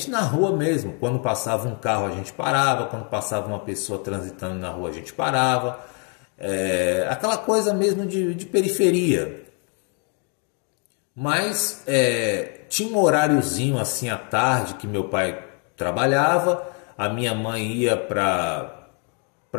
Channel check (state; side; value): quieter; right; 39.2 dB